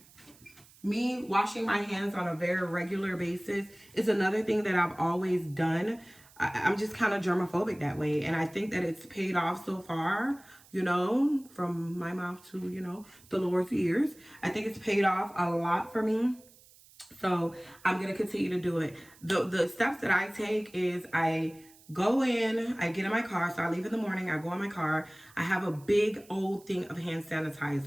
Me washing my hands on a very regular basis is another thing that I've always done. I'm just kind of germophobic that way. And I think that it's paid off so far, from my mouth to, the Lord's ears. I think it's paid off a lot for me. So I'm gonna continue to do it. The steps that I take is I go in, I get in my car. So I leave in the morning, I go in my car. I have a big old thing of hand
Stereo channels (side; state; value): right; noise; hiss, 25 dB below the sound